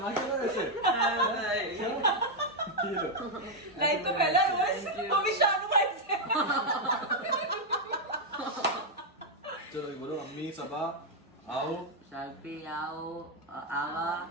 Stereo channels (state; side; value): normal; both; correlation 0.00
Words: क्या वैसे? लाइफ तो पहला रोज वो भी शानू भाई से। चलो बोलो, अम्मी सबा आओ, शाल्पी आओ, आवा,